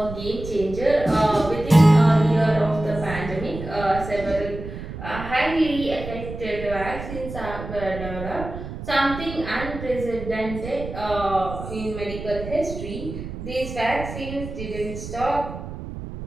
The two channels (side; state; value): right; noise; rumble, 9 dB below the sound